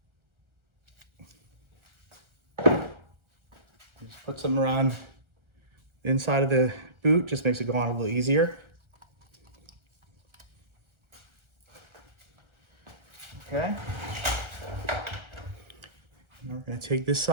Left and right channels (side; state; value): left; late; 1.3 ms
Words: Just put some around the inside of the boot, just makes it go on a little easier. Okay. And we're gonna take this